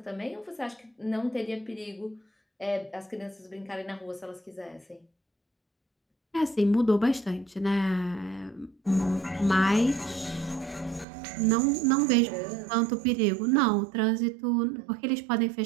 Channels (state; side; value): drops out; left; at 11.1 s